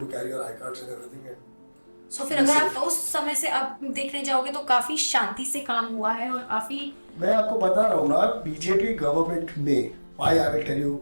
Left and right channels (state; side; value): inverted; both; correlation -1.00